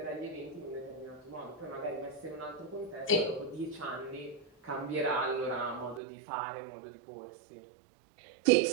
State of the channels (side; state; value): left; drops out; at 6.0 s